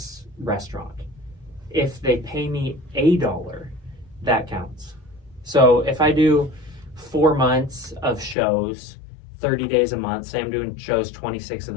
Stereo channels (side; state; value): right; drops out; at 8.3 s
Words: restaurant. If they pay me $1, that counts. So if I do 4 months of shows, 30 days a month, say I'm doing shows 26 of